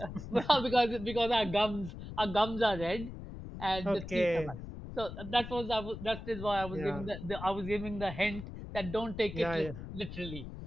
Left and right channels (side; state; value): left; noise; rumble, 10 dB below the sound